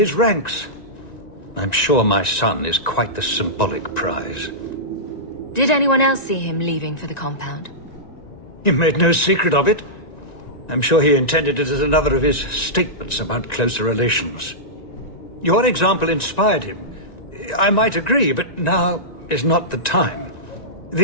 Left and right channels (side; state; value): right; late; 1.9 ms